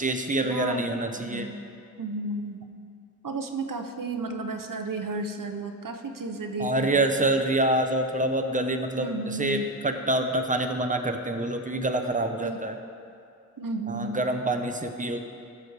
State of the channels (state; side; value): normal; both; correlation 0.16